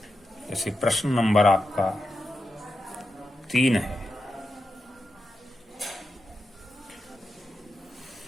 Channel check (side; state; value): both; normal; correlation 0.88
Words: जैसे प्रश्न नंबर आपका 3 है।